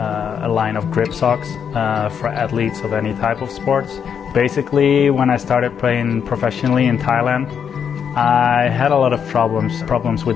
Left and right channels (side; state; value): right; quieter; 7.5 dB